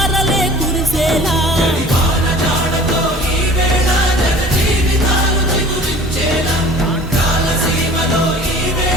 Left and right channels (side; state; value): both; normal; correlation 0.45